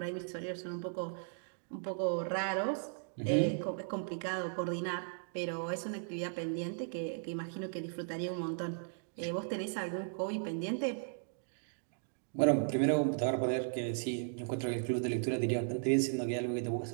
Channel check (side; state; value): left; silent; digital silence